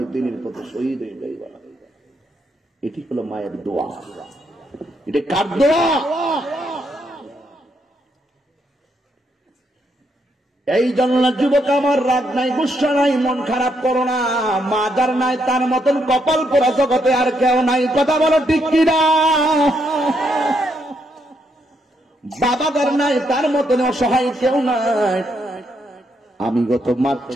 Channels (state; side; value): normal; both; correlation 0.77